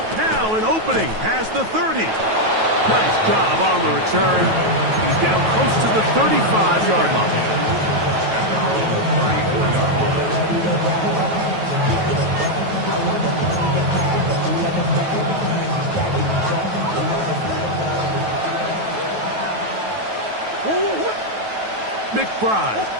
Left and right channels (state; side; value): late; left; 9.2 ms